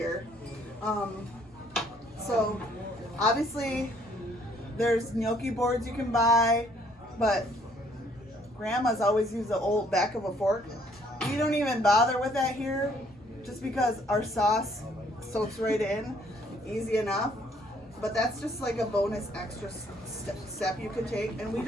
So obviously there's gnocchi boards you can buy, but grandma's always used the old back of a fork. We don't even bother with that here just because our sauce soaks right in, easy enough. But that's just like a bonus extra step you can take. And we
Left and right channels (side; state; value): both; normal; correlation 0.64